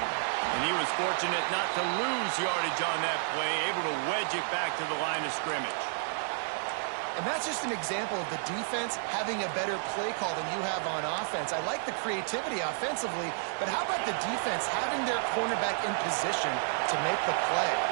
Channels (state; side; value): silent; left; digital silence